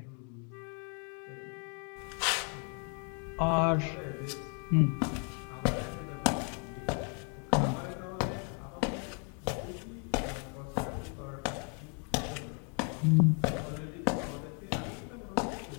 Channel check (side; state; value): right; quieter; 40.0 dB